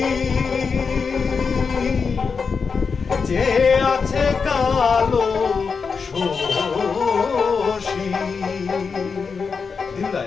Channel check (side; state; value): right; quieter; 5.3 dB